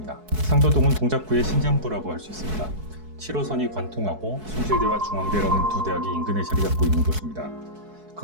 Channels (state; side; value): late; left; 4.6 ms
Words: 상도동은 동작구의 심장부라고 할 수 있습니다. 7호선이 관통하고 숭실대와 중앙대라는 두 대학이 인근에 자리 잡고 있는 곳입니다.